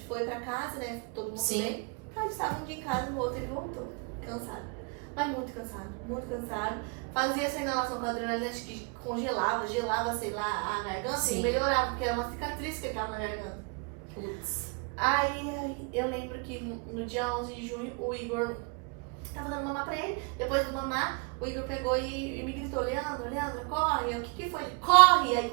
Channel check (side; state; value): left; quieter; 32.6 dB